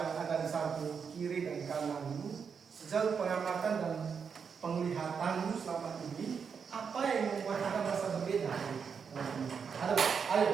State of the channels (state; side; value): quieter; left; 6.3 dB